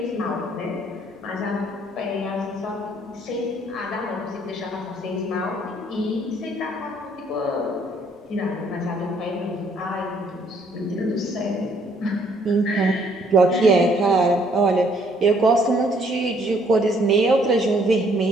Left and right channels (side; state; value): both; normal; correlation 0.64